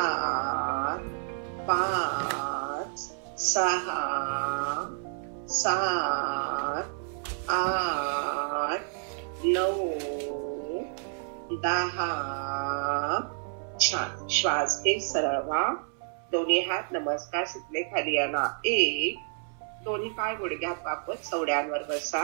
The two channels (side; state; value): left; silent; 58 dB below the other